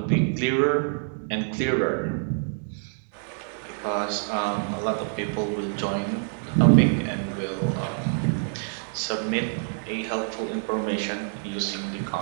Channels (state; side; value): silent; left; 61 dB below the other